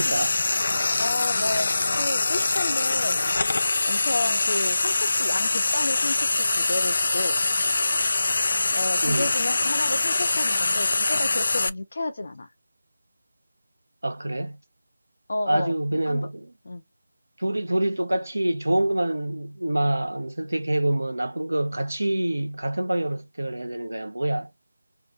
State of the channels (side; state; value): both; inverted; correlation -0.96